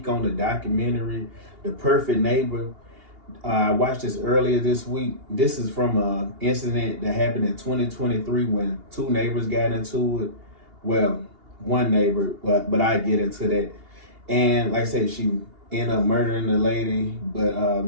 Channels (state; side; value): late; left; 2.8 ms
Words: on the documentary, The Perfect Neighbor. I watched this earlier this week. This is from an incident that happened in 2023 when two neighbors got into it. Well, one neighbor, but I get into that. And like I said, she ended up murdering the lady, but